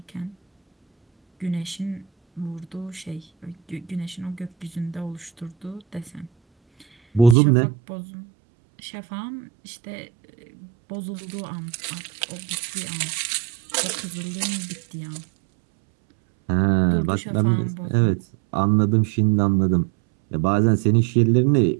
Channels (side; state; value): left; drops out; at 7.4 s